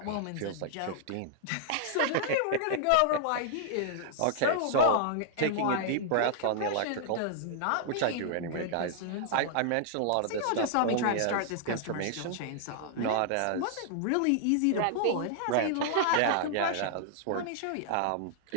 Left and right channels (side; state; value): both; different; correlation -0.01